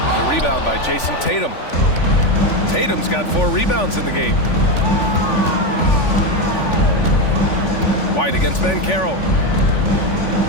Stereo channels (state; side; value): late; right; 3.5 ms